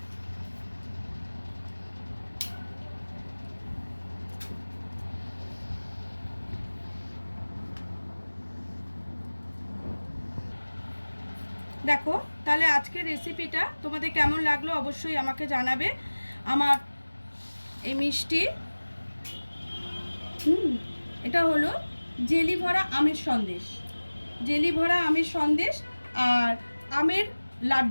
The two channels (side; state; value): both; inverted; correlation -1.00